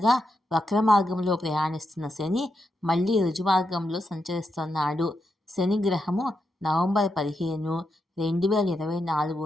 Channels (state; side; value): normal; both; correlation 0.84